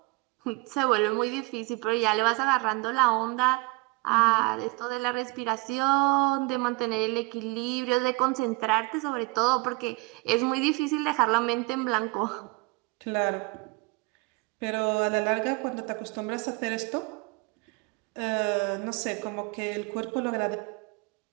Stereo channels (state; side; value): quieter; left; 26.1 dB